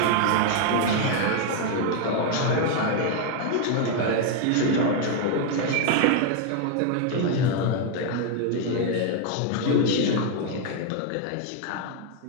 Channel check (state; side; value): different; both; correlation 0.00